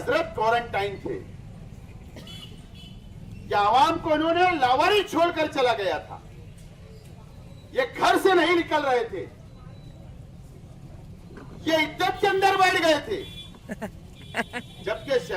क्वारंटाइन थे। या आवाम को इन्होंने लावारी छोड़कर चला गया था, ये घर से नहीं निकल रहे थे, ये इज्जत के अंदर बैठ गए थे, जबकि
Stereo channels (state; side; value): identical; both; correlation 1.00